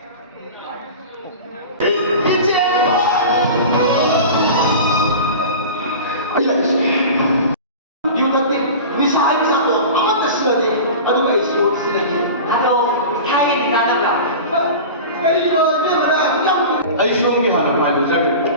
Aisiomgi hana palu jaga.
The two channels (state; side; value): inverted; both; correlation -0.33